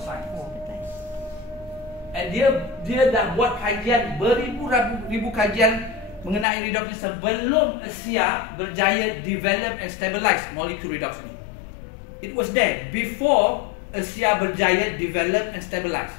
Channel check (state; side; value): drops out; right; at 6.5 s